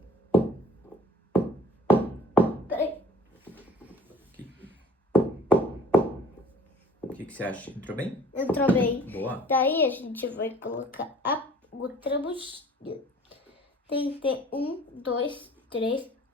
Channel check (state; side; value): normal; both; correlation 0.50